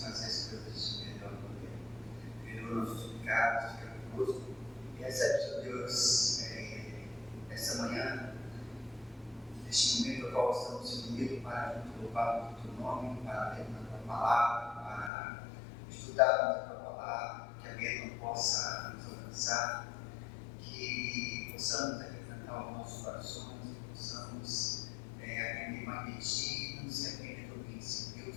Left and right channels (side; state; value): right; drops out; at 15.1 s